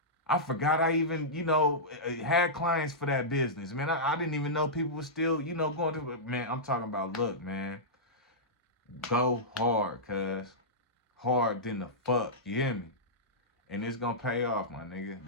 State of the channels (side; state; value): both; normal; correlation -0.13